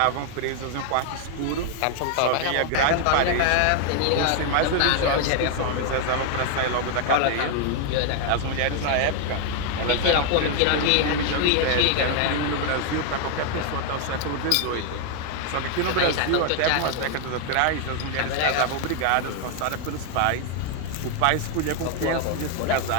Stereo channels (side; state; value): both; different; correlation 0.00